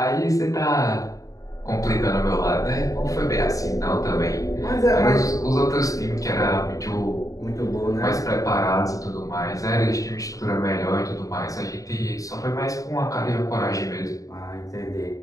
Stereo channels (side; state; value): right; late; 0.16 ms